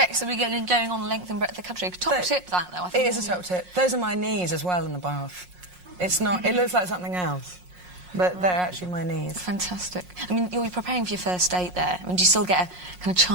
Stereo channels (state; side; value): late; left; 5.5 ms